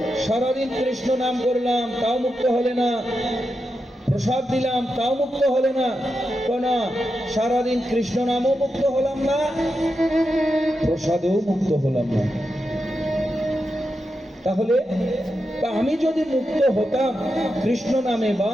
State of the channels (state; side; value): normal; both; correlation 0.87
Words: সারাদিন কৃষ্ণ নাম করলাম, তাও মুক্ত হলে না। প্রসাদ দিলাম, তাও মুক্ত হলে না। না, সারাদিন কৃষ্ণ নামও মুক্ত হলাম না, প্রসাদও মুক্ত হলাম না। তাহলে আমি যদি মুক্ত হতাম কৃষ্ণ নামে বা